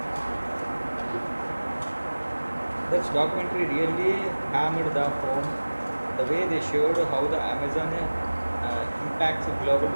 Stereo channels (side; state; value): both; inverted; correlation -1.00